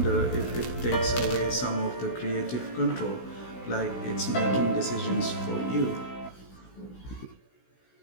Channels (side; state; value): right; late; 16 ms